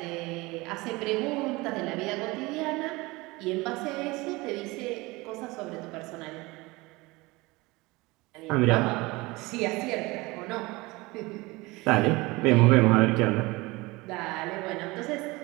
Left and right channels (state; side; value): quieter; left; 22.7 dB